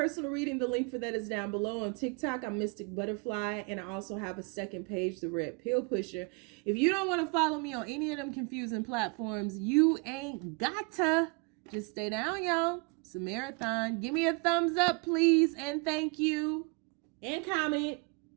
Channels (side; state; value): left; quieter; 31.7 dB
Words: reading, the link for that is down below. On TikTok, I'm Mystic Butterfly, and I also have a second page, the Red Pill Pusher. If you don't want to follow me on any of them confusing platforms, you ain't gotta. Just stay down, y'all. It's a marathon. Give me a thumbs up, please, and thank you. And comment.